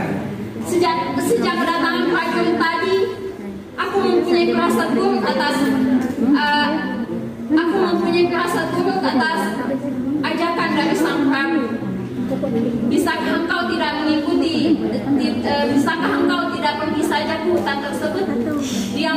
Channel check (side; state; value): both; identical; correlation 1.00